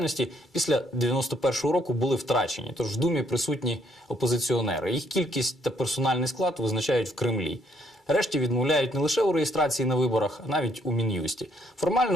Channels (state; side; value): normal; both; correlation 0.68